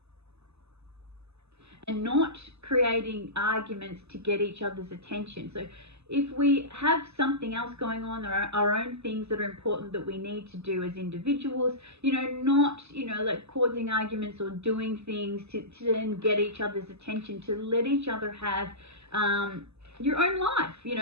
not creating arguments to get each other's attention. So if we have something else going on, our own things that are important that we need to do as individuals, you know, not, you know, like causing arguments or doing things to then get each other's attention, to let each other have your own life, you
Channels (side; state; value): left; late; 0.80 ms